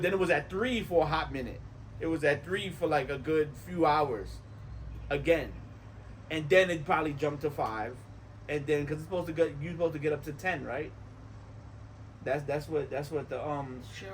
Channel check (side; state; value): both; identical; correlation 1.00